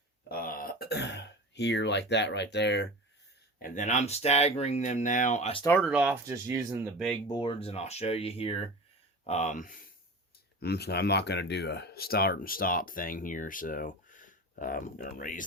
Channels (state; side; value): normal; both; correlation 0.32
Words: here like that right there. And then I'm staggering them now. I started off just using the big boards, and I'll show you here. I'm not going to do a start and stop thing here, so I'm going to